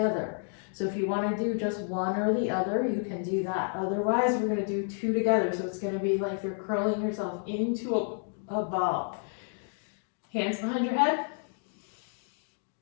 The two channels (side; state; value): right; silent; 56 dB below the other